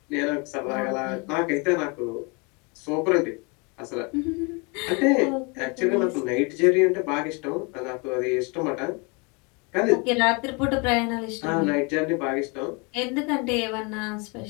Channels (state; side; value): quieter; right; 31.0 dB